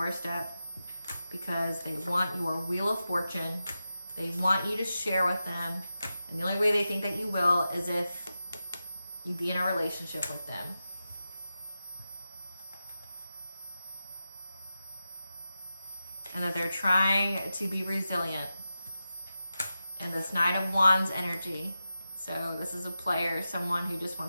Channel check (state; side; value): inverted; both; correlation -0.92